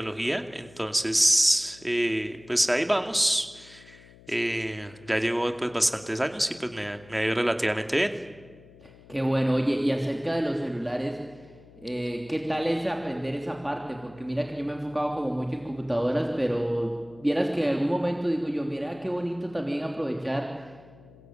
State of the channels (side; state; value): left; noise; hum, 23 dB below the sound